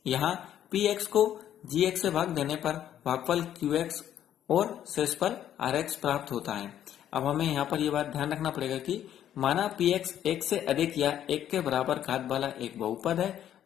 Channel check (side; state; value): right; quieter; 10.8 dB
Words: यहाँ px को gx से भाग देने पर भागफल qx और शेषफल rx प्राप्त होता है। अब हमें यहाँ पर यह बात ध्यान रखना पड़ेगा कि माना px 1 से अधिक या 1 के बराबर घात वाला एक बहुपद है